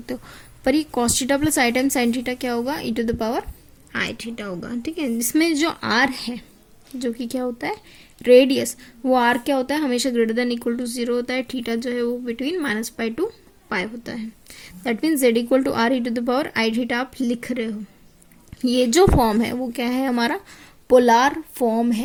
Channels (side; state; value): both; identical; correlation 1.00